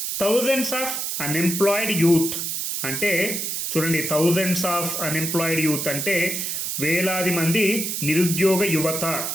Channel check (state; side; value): noise; right; hiss, 2 dB below the sound